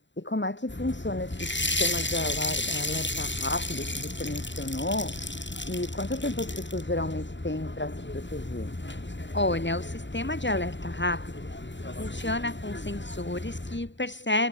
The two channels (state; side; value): late; right; 0.53 ms